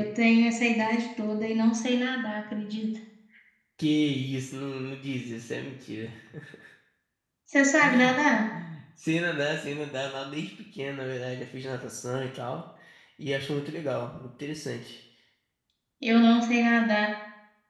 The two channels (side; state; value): both; identical; correlation 1.00